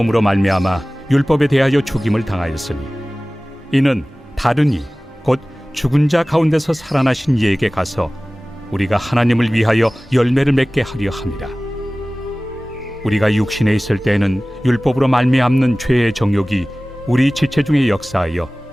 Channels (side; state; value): both; normal; correlation 0.98